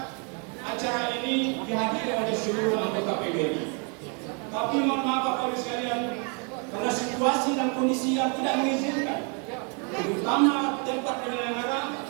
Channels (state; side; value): quieter; left; 37.0 dB